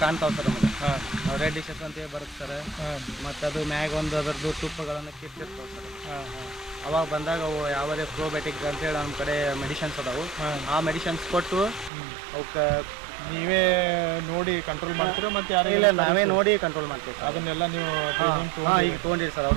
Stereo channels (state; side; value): drops out; left; at 11.9 s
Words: ಕಾಣ್ತಾವೆ ಸರ್ ನಮಗೆ. ರೆಡ್ ಡಿಶಸ್ ಅಂತೇಳಿ ಬರುತ್ತೆ ಸರ್. ಮತ್ತು ಅದು ಮ್ಯಾಗ ಒಂದು ಅದರದ್ದು ತುಪ್ಪಗಳನ್ನು ಕಿತ್ತಿರ್ತಾವೆ ಸರ್. ಅವಾಗ ಬಂದಾಗ ಅವು ಯಾವುದೇ ಪ್ರೋಬಯೋಟಿಕ್ ಅಂತೇಳಿ ನಮ್ಮ ಕಡೆ ಮೆಡಿಷನ್ಸ್ ಅದಾವು. ಆ ಮೆಡಿಷನ್ಸ್ ಕೊಟ್ಟು ಅವಕ್ಕೆ ನೀವೇ ನೋಡಿ ಕಂಟ್ರೋಲ್ ಮಾಡ್ತೀರಾ? ಮತ್ತು ಇಲ್ಲ, ನಾವೇ ನೋಡಿ ಕಂಟ್ರೋಲ್ ಮಾಡ್ತೀವಿ ಸರ್. ಅದನ್ನೆಲ್ಲ ನೀವು ಈಗ ತೊಗೊಂಡಿರಿ ಸರ್.